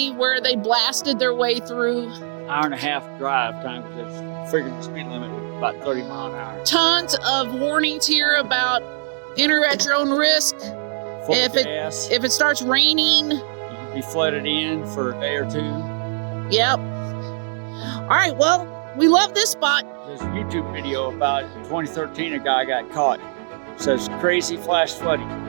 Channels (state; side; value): silent; left; digital silence